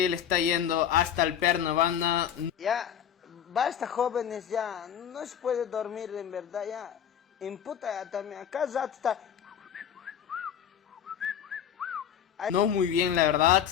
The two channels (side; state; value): right; quieter; 9.1 dB